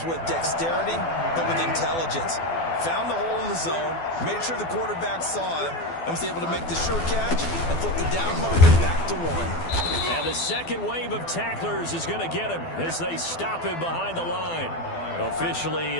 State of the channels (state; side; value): late; right; 12 ms